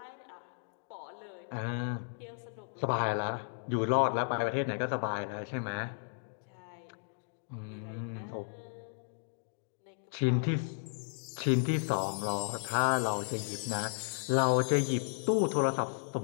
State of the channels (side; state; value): right; silent; digital silence